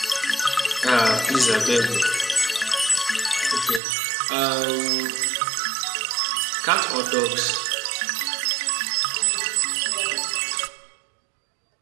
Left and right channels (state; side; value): drops out; left; at 3.8 s